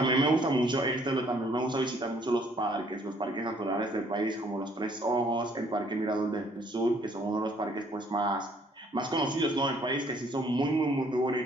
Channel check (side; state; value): both; normal; correlation 0.62